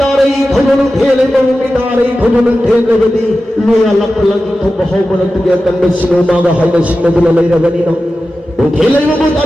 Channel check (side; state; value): both; normal; correlation 0.93